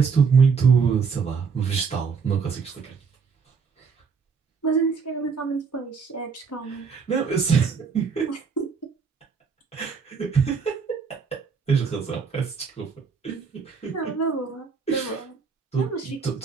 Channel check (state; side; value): quieter; left; 5.6 dB